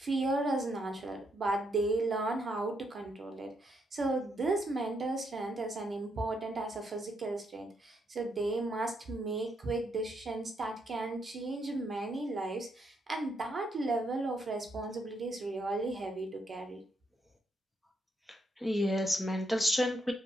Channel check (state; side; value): normal; both; correlation 0.77